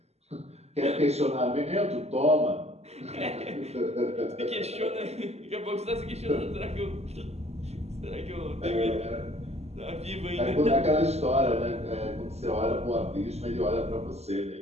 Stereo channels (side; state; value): left; late; 0.30 ms